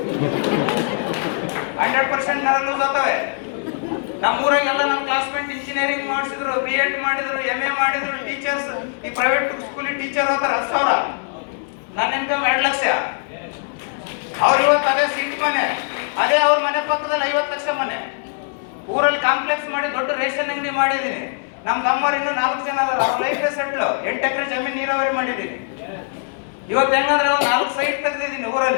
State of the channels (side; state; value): right; silent; 59 dB below the other